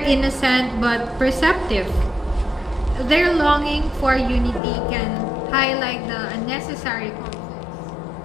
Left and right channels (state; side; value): drops out; right; at 4.6 s